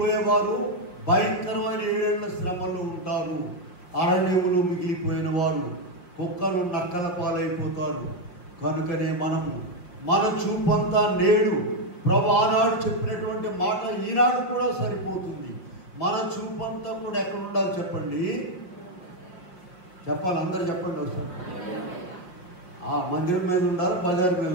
భయంకరమైన 7 ఏళ్ల శ్రమలో ఉంటారు. అరణ్యములు మిగిలిపోయిన వారు కుక్కలు నక్కల పాలైపోతారు. కనుకనే మనము మన చూపంతా నేడు ప్రభు ఆనాడు చెప్పినటువంటి మాట ఈనాడు కూడా సరిపోతుంది. మన చూపంతా కూడా ఎక్కడ ఉండాలి చెప్పండి? చెప్పాలి, అందరు చెప్పండి. వస్తారు ఆ మందిరం మీద ఉండాలి, బజార్ మీద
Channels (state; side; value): late; right; 6.0 ms